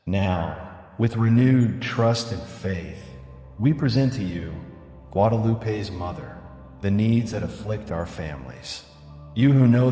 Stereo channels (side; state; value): both; identical; correlation 1.00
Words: Now, with renewed trust and faith, we present to you, Guadalupe's Mother, the needs that afflict our families. You who know